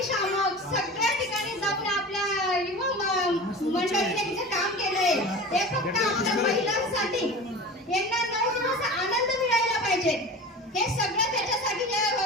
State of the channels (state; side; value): normal; both; correlation 0.34